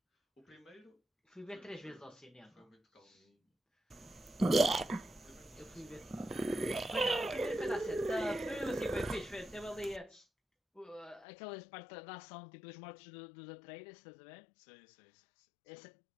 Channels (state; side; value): drops out; right; at 11.2 s